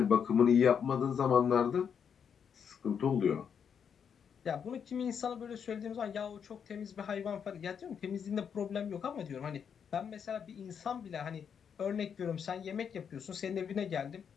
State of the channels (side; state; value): right; quieter; 7.3 dB